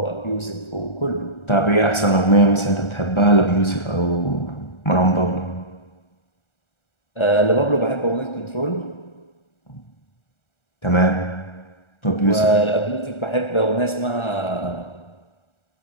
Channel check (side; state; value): right; late; 1.4 ms